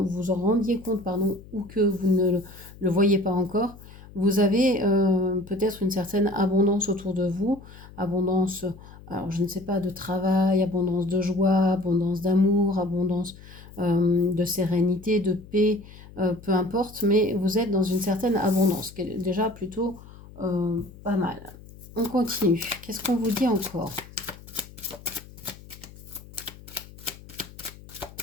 rendiez compte, pardon, ou que vous ne le voyez pas encore. Vous avez peut-être une certaine abondance autour de vous, abondance, alors je ne sais pas, de travail, abondance de joie, abondance d'amour, abondance de sérénité, de paix, peu importe, mais vous êtes dans une certaine abondance, ce qui est déjà plutôt pas mal. On continue. Qu'est-ce qu'on vous dit encore?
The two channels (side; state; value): left; noise; hum, 19 dB below the sound